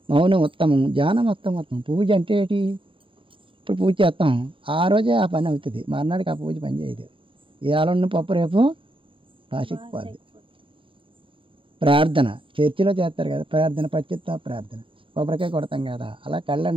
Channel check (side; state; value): left; late; 0.25 ms